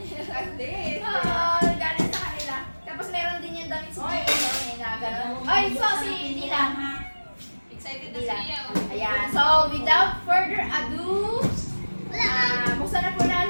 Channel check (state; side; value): inverted; both; correlation -1.00